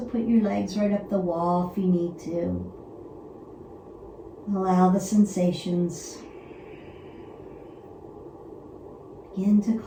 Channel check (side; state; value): both; identical; correlation 1.00